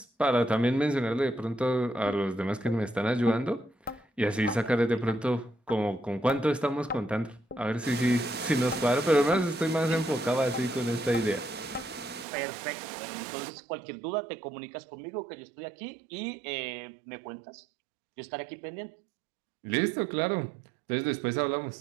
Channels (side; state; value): left; drops out; at 12.2 s